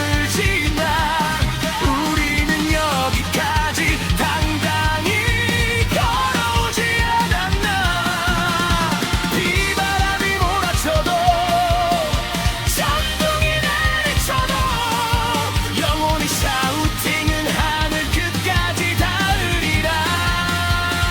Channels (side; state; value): both; identical; correlation 1.00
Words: 지나 우리는 여기까지 당당히 걸어오지 않았나. 비바람이 몰아쳐도 천둥이 내리쳐도 영원히 샤우팅은 하늘 끝까지 닿으리라.